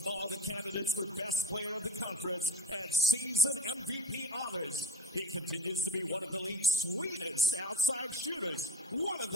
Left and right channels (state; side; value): normal; both; correlation 0.32